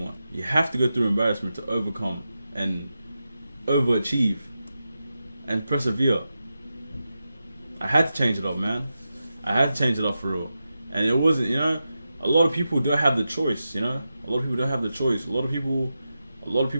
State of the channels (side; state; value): both; inverted; correlation -0.90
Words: You have to go through embarrassment to overcome and overachieve and persevere. I had to change it up, man. I had to change it up, for real. And it wasn't, you know, a lot of people don't have the choice, you know? A lot of people don't have the choice. A lot of people